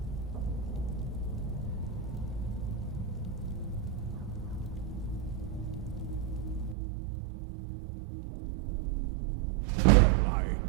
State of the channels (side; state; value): left; drops out; at 6.8 s